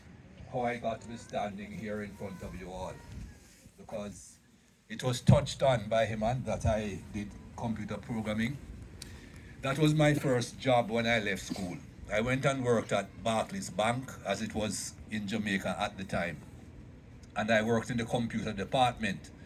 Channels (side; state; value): both; identical; correlation 1.00